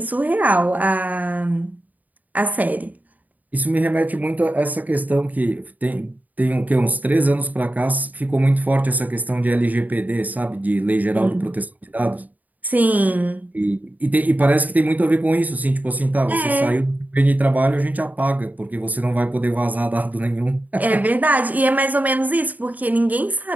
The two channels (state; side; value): late; left; 0.079 ms